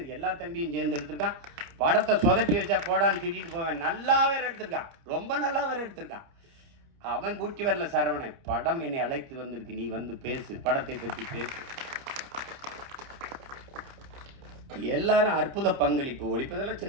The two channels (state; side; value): late; left; 29 ms